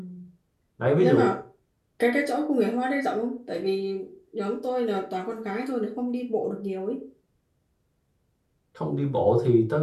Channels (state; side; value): identical; both; correlation 1.00